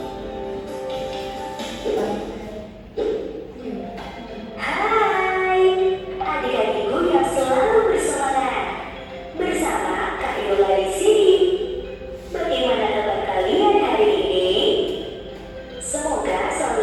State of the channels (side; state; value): both; identical; correlation 1.00